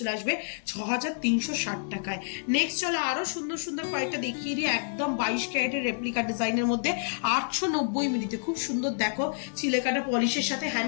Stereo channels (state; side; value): silent; right; digital silence